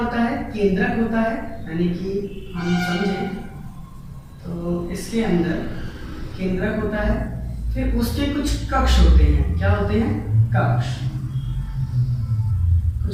है, केंद्रक होता है। यानी कि हम समझें तो इसके अंदर केंद्रक होता है, फिर उसके कुछ कक्ष होते हैं। क्या होते हैं? कक्ष।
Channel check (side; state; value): both; identical; correlation 1.00